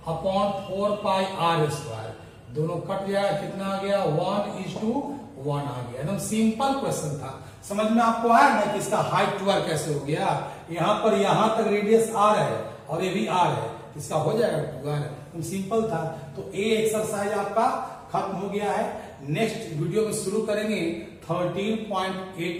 अपॉन 4 पाई r स्क्वायर, दोनों कट जाएगा, कितना आ गया 1:1 आ गया। एकदम सिंपल क्वेश्चन था, समझ में आपको आया ना कि इसका हाइट 2r कैसे हो गया। यहां पर यहां तक रेडियस r है और ये भी r है, इसका हो जाएगा 2r, एकदम सिंपल था। तो ए एक्सरसाइज आपका खत्म हो गया है। नेक्स्ट वीडियो में शुरू करेंगे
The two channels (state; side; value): identical; both; correlation 1.00